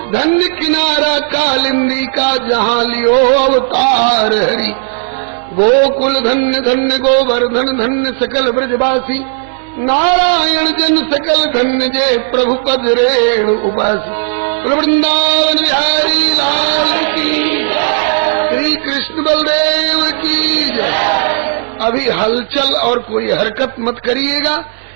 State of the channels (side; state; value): left; silent; digital silence